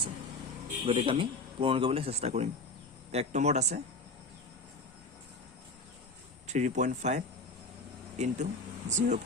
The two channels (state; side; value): quieter; right; 3.0 dB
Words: গতিকে আমি পূৰণ কৰিবলৈ চেষ্টা কৰিম। 1 নম্বৰত আছে 3.5 ×